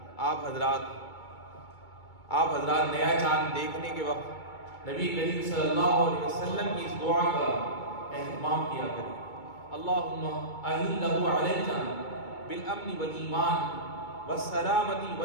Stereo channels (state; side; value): late; right; 2.2 ms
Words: آپ حضرات نیا چاند دیکھنے کے وقت نبی کریم صلی اللہ علیہ وسلم کی اس دعا کا اہتمام کیا کریں، اللہم اہلہ علینا بالامن والایمان والسلامۃ